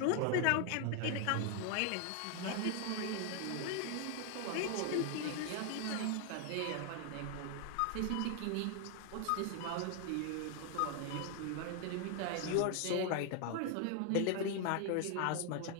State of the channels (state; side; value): different; both; correlation 0.00